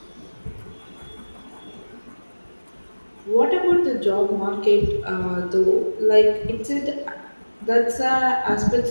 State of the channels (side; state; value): both; inverted; correlation -1.00